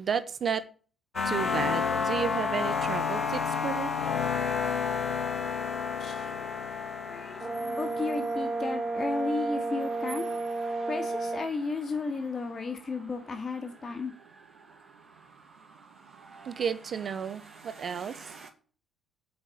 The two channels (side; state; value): both; normal; correlation 0.70